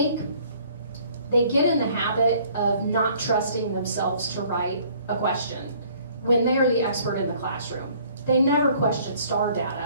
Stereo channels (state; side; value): inverted; both; correlation -0.58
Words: they get in the habit of not trusting themselves to write a question when they are the expert in the classroom. They never question STAR